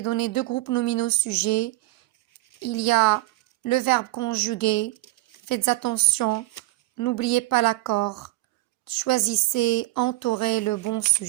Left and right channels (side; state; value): left; quieter; 19.1 dB